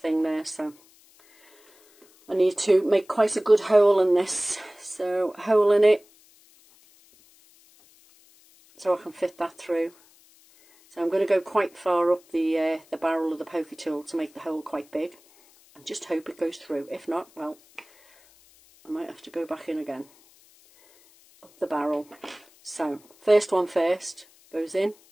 there, so I need to make quite a good hole in this. So, hole in it, so I can fit that through. So I'm going to go quite far up the barrel of the poker tool to make the hole quite big, and just hope it goes through. If not, well, I might have to go back in again. Up the barrel. So, first one first, goes in.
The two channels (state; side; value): noise; left; hiss, 28 dB below the sound